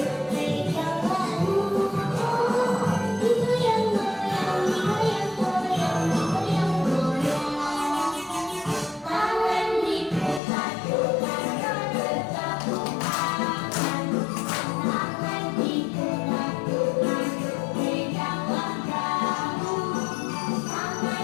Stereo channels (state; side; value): drops out; right; at 10.4 s